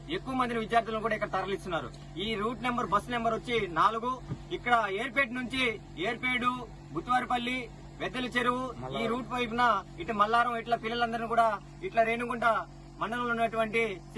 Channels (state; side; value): identical; both; correlation 1.00